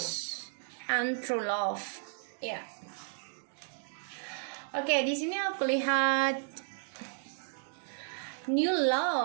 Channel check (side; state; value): left; silent; digital silence